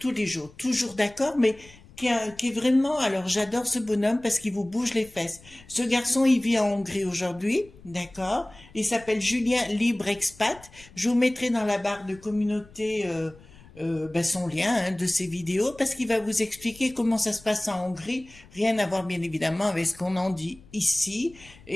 d'accord, mais qui est vraiment, alors j'adore ce bonhomme parce qu'il vous bouge les fesses. Ce garçon, il vit en Hongrie aujourd'hui, d'accord? Il s'appelle Julien Libre Expat. Je vous mettrai dans la barre de communauté son lien de ses vidéos parce qu'il va vous expliquer comment ça se passe en Hongrie. Rien à voir bien évidemment avec ce qu'on en dit ici.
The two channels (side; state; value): left; noise; rumble, 23 dB below the sound